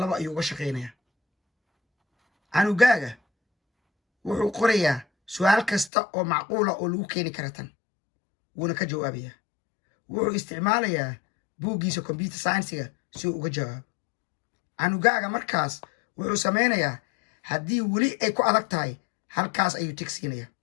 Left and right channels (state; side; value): drops out; right; at 5.9 s